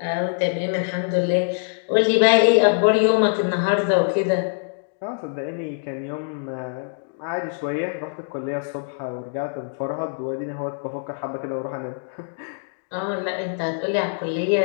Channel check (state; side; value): silent; right; digital silence